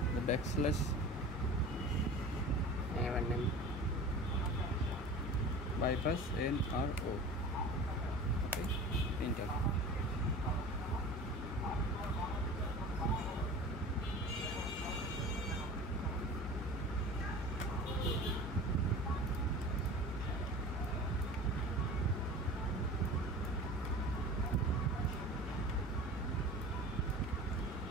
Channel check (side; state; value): both; normal; correlation 0.37